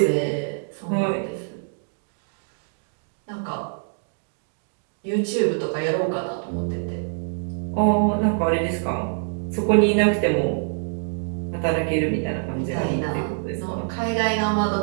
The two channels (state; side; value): silent; left; digital silence